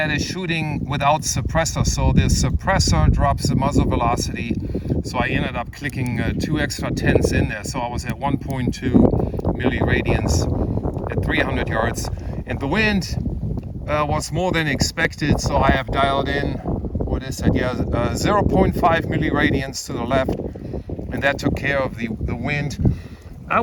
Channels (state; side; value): identical; both; correlation 1.00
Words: is shooting without suppressor, so the suppressor drops the muzzle velocity. So I ended up clicking 2 extra tenths in there, so I was at 1.2 milliradians at 300 yards, and the wind was more than expected, so I have dialed in, what is that, 0.5 milliradians to the left, and that took care of the wind. I